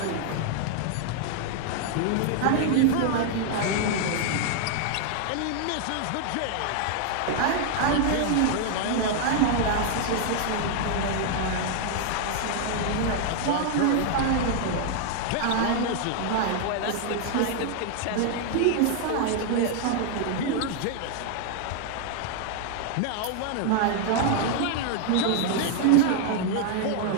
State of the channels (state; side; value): different; both; correlation 0.00